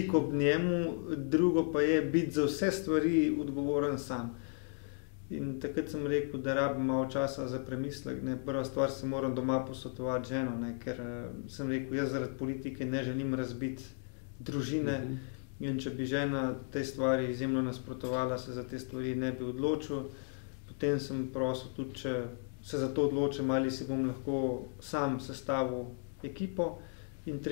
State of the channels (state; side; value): silent; right; 55 dB below the other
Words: ob njemu, drugo pa je biti za vse stvari odgovoren sam. In takrat sem rekel, da rabim malo časa za premislek. Ne. Prva stvar se moram doma posvetovati ženo, ne, ker sem rekel, jaz zaradi politike ne želim razbiti družine in če bi žena te stvari izjemno nasprotovala, se za te stvari ne bi odločil. Potem sem prosil tudi, če se za to odločim, ali si bom lahko sam sestavil ekipo. In